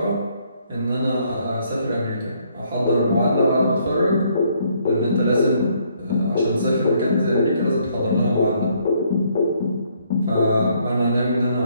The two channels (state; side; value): inverted; both; correlation -0.68